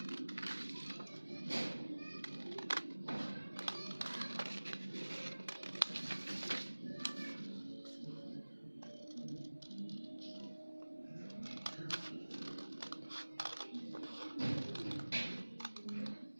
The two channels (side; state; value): both; inverted; correlation -1.00